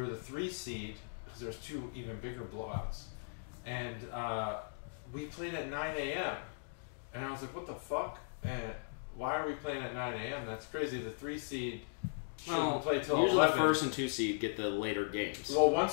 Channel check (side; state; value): right; silent; digital silence